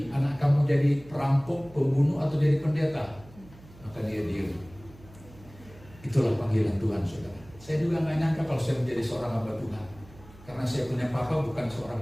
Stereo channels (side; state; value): right; noise; hum, 22 dB below the sound